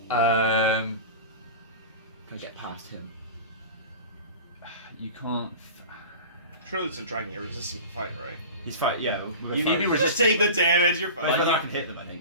Um, Can I get past him? you can't. Surely it's a dragon. You're resistant to fire, right? He's fight. Yeah. You need to be Just take the damage. You're Whether fine. I can hit them, I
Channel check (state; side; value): inverted; both; correlation -0.34